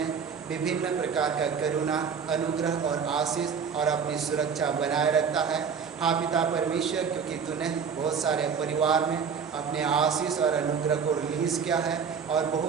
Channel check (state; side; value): quieter; left; 6.5 dB